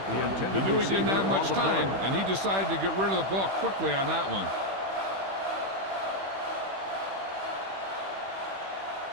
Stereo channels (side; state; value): left; late; 15 ms